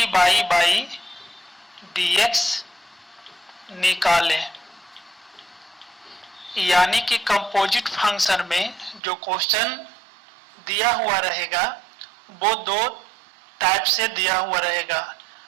by by D X निकालें। यानी कि कंपोजिट फंक्शन में जो क्वेश्चन दिया हुआ रहेगा वो दो टाइप से दिया हुआ रहेगा।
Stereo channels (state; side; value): drops out; left; at 9.0 s